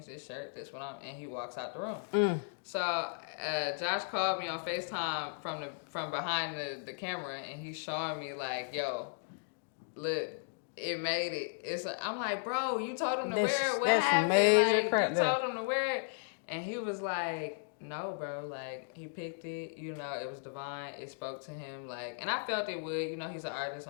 this shirt, this one, and he walks out the room. So Josh called me on FaceTime from behind the camera, and he's showing me like, yo, look, it made it. I'm like, bro, you told him to wear it. What happened? Major like, crap you told him to wear it, and he was like, no, bro, like he picked it. You know, it was divine. It spoke to him, like, and I felt it would. You know, he's an artist.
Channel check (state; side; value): silent; right; digital silence